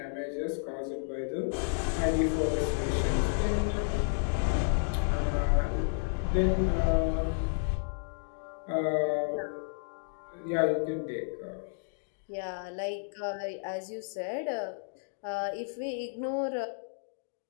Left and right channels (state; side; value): silent; right; digital silence